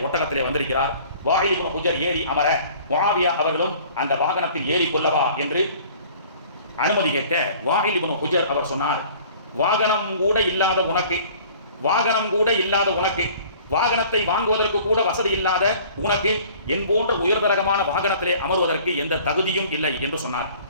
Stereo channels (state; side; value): inverted; both; correlation -0.50